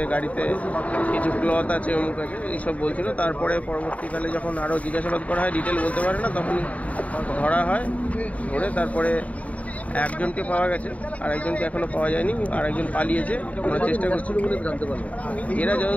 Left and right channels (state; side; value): late; right; 0.069 ms